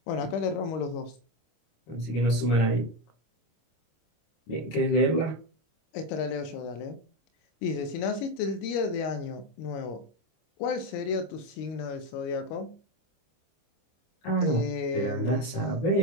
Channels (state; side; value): late; right; 25 ms